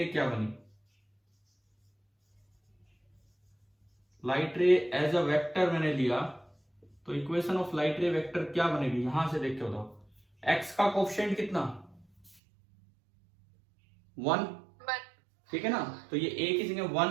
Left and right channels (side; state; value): left; drops out; at 12.4 s